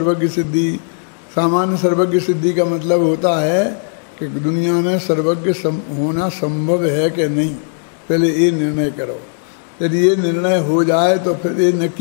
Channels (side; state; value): right; silent; 62 dB below the other